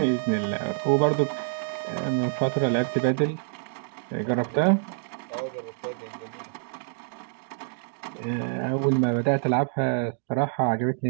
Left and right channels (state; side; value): silent; left; digital silence